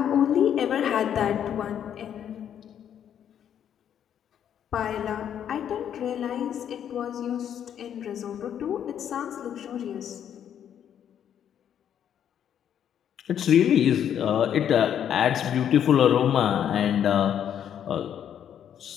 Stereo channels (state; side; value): quieter; right; 9.4 dB